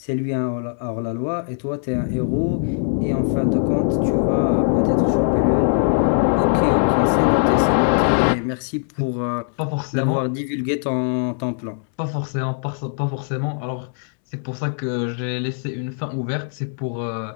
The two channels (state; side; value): silent; right; 65 dB below the other